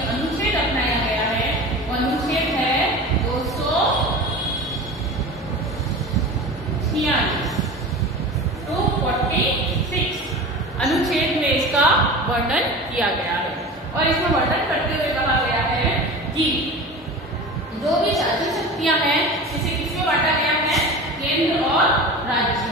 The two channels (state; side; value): normal; both; correlation 0.33